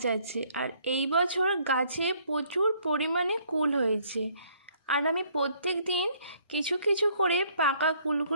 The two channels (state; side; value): inverted; both; correlation -0.63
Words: আছে, আর এই বছর গাছে প্রচুর পরিমাণে কুল হয়েছে। আর আমি প্রত্যেক দিন কিছু কিছু করে পাকা